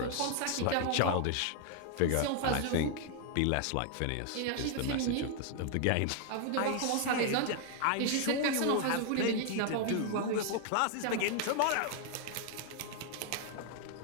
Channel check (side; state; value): both; different; correlation 0.00